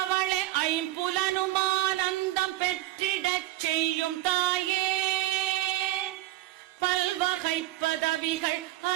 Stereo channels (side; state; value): left; quieter; 16.5 dB